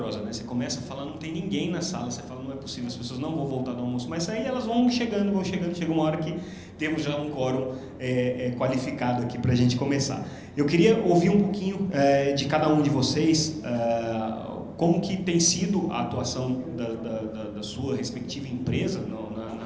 né? Você começa a falar, não tem ninguém na sala, você fala, não é possível, as pessoas não vão voltar do almoço, mas aí elas vão chegando, chega uma hora que temos já um quórum qualificado aqui para a gente começar. Eu queria ouvir um pouquinho de cada um de vocês, como que tem sido a atuação da sua respectiva empresa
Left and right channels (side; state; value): both; identical; correlation 1.00